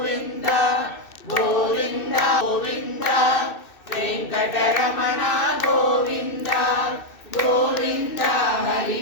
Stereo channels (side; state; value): right; late; 2.6 ms